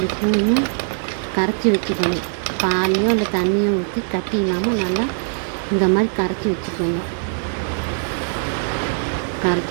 ஸ்பூனு கரைச்சி வச்சுக்கோங்க. பால்லையோ இல்லை தண்ணியோ ஊற்றி கட்டி இல்லாமல் நல்லா இந்த மாதிரி கரைச்சி வச்சுக்கோங்க.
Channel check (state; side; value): silent; left; 65 dB below the other